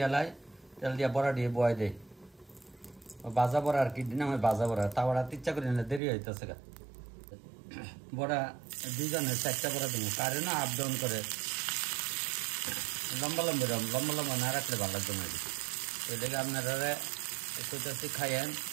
লাই তেল দিয়া বড়া দিয়ে বয় দেয় বাজা বড়া আর কি দিন আমি বাজা বড়া তাওয়াটা ইচ্ছা করি না দেরি হইতেছে গা বড়া 2জনের 4টা বড়া দেবো কারে না আপ ডাউন করে লম্বা লম্বা না রাখলে ভালো লাগবে না এদিকে আপনারা একটু খাইয়েন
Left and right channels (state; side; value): drops out; left; at 6.0 s